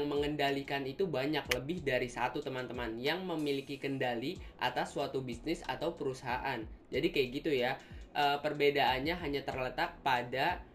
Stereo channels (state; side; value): identical; both; correlation 1.00